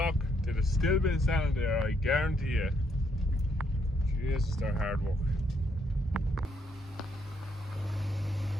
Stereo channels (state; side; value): normal; both; correlation 0.73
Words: they'd have still been standing there, I guarantee you. Jesus, they're hard work.